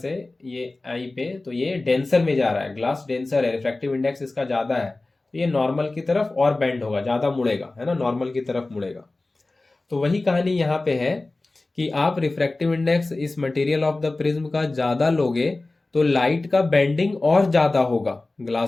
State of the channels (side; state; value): right; quieter; 3.1 dB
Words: ये आई पे तो ये डेंसर में जा रहा है, ग्लास डेंसर है, रिफ्रैक्टिव इंडेक्स इसका ज़्यादा है, तो ये नॉर्मल की तरफ और बेंड होगा, ज़्यादा मुड़ेगा, है ना, नॉर्मल की तरफ मुड़ेगा। तो वही कहानी यहाँ पे है कि आप रिफ्रैक्टिव इंडेक्स इस मटेरियल ऑफ द प्रिज्म का ज्यादा लोगे तो लाइट का बेंडिंग और ज्यादा होगा